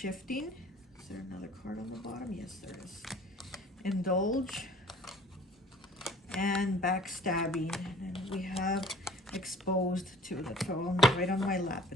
Is there another card on the bottom? Yes, there is. Indulge and backstabbing. And then we have exposed too. That fell right on my lap.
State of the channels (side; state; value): both; normal; correlation 0.49